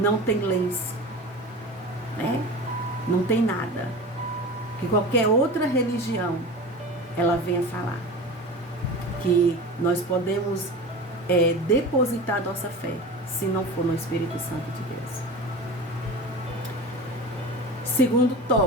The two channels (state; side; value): normal; both; correlation 0.32